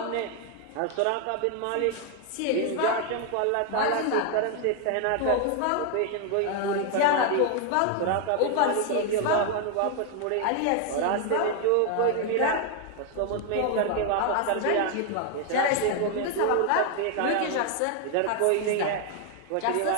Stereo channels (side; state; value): both; different; correlation 0.00